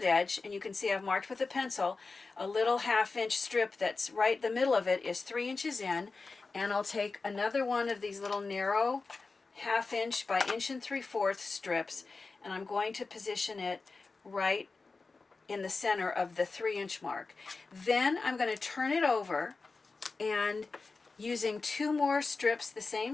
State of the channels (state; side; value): quieter; right; 4.0 dB